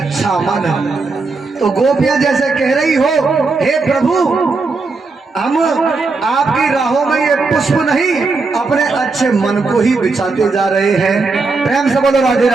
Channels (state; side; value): quieter; left; 4.0 dB